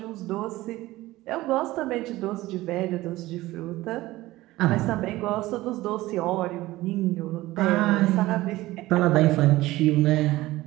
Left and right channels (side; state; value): left; quieter; 17.7 dB